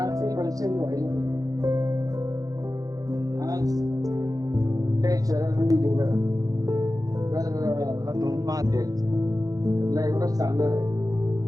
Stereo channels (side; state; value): left; late; 0.17 ms